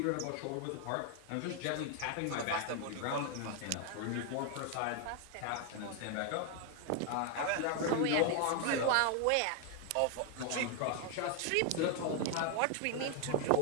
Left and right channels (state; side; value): different; both; correlation 0.01